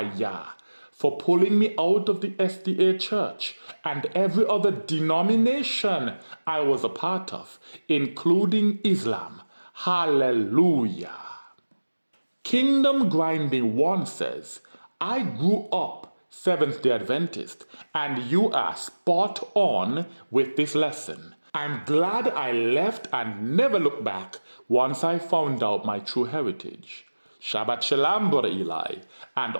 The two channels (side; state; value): both; inverted; correlation -1.00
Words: Yah for pulling me out of the SDA Church and every other denomination I was a part of, including Islam. Hallelujah. Kingdom Grinding 1 says, I grew up Seventh-day Adventist, and you are spot on with this lesson. I'm glad I left and never looked back once I found out my true heritage. Shabbat Shalom, Brother Eli, and